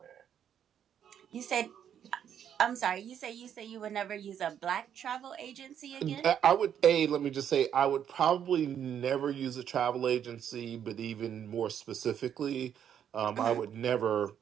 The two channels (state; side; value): quieter; left; 9.1 dB